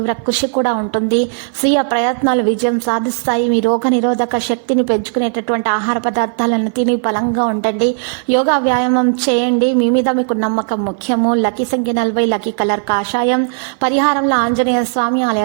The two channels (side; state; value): left; silent; 56 dB below the other